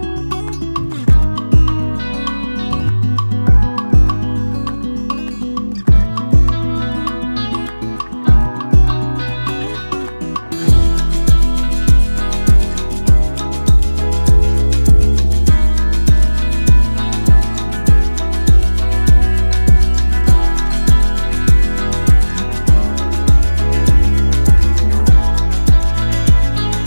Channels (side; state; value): both; inverted; correlation -1.00